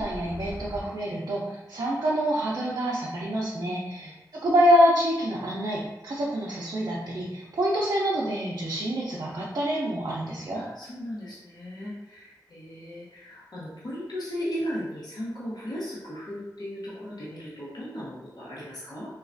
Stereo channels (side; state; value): both; normal; correlation 0.74